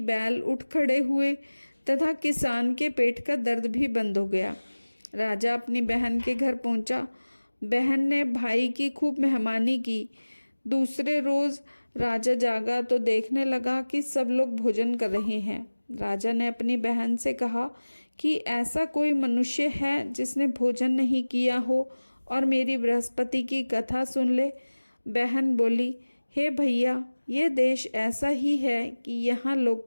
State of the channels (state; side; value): inverted; both; correlation -1.00